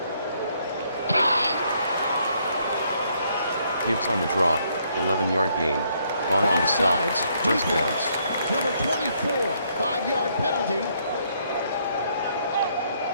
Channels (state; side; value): inverted; both; correlation -0.70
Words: Gibbs on the draw, 11-yard gain, Vaughn on the stop, first down. Number 24, 5-yard penalty.